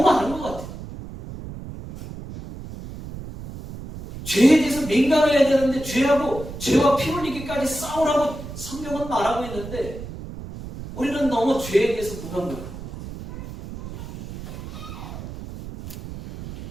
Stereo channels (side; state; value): right; noise; rumble, 11 dB below the sound